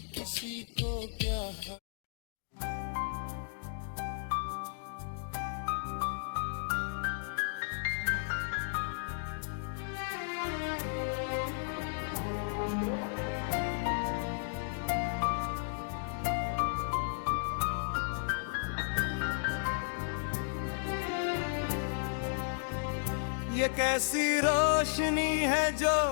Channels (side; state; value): right; silent; digital silence